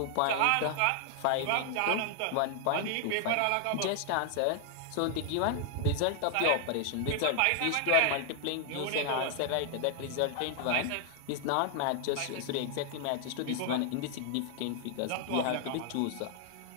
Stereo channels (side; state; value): both; different; correlation 0.00